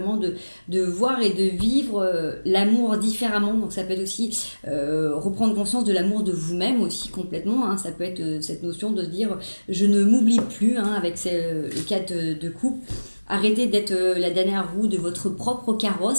de voir et de vivre l'amour différemment. Donc ça peut être aussi reprendre conscience de l'amour de vous-même aussi complètement, hein. Ça peut être cette notion de se dire je ne m'oublie plus, hein, avec le cadre de couple. Arrêtez d'être la dernière roue de votre propre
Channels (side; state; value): both; inverted; correlation -1.00